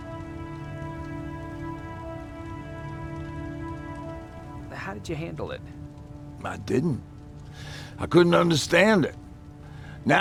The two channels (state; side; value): identical; both; correlation 1.00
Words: How did you handle it? I didn't. I couldn't understand it.